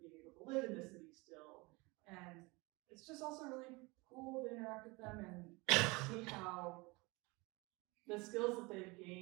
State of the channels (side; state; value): left; quieter; 25.2 dB